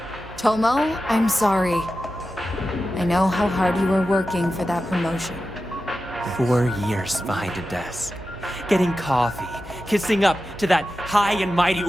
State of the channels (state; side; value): normal; both; correlation 0.92